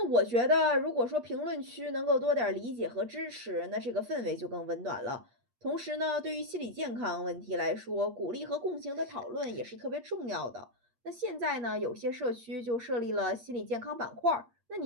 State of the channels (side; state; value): left; late; 8.5 ms